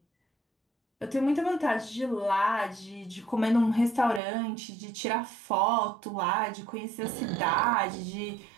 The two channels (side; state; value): left; drops out; at 4.2 s